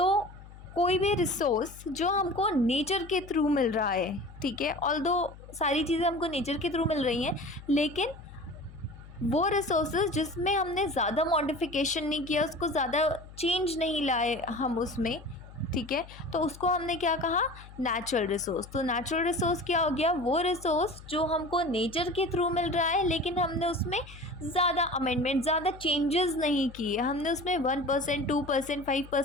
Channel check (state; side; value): noise; left; hum, 18 dB below the sound